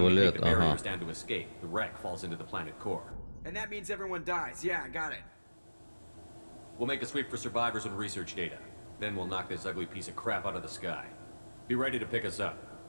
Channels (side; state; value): both; inverted; correlation -1.00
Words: we позволяет... take the Ага. barriers down to escape, the wreck falls into the planet core. And that means everyone dies. Yeah, got it. We'll make a sweep for survivors and research data. Then we'll knock this ugly piece of crap out of the sky. Be ready to pick us up.